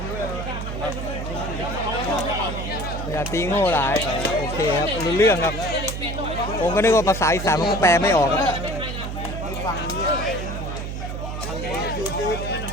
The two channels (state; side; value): noise; right; hum, 5 dB below the sound